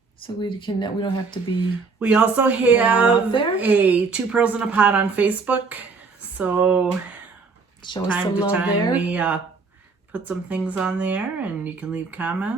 So we don't have to be. We also have a 2 Pearls in a Pod on Facebook. So show us some love there. We put some things on there, and you can leave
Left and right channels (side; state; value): left; quieter; 4.5 dB